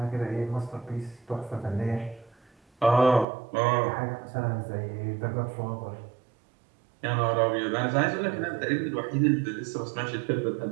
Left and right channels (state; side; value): drops out; left; at 3.2 s